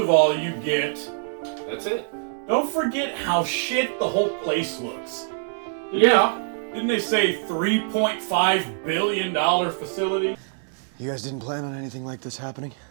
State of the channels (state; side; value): silent; left; digital silence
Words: all, you get... That's it. Don't forget how shit the whole place looks. Didn't they say $3.5 billion facility? You guys didn't plan on anything like this happening?